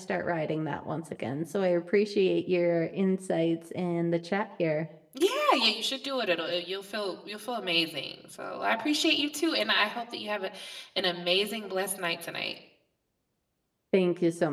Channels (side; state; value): both; identical; correlation 1.00